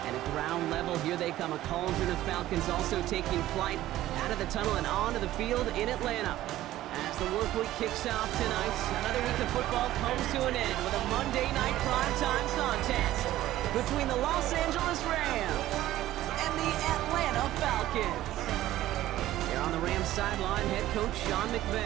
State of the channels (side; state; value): left; quieter; 14.5 dB